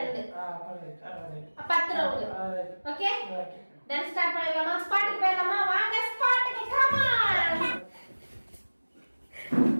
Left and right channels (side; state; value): both; inverted; correlation -1.00